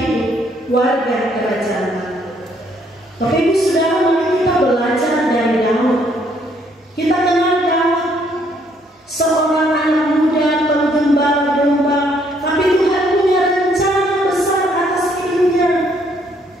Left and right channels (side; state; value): both; normal; correlation 0.68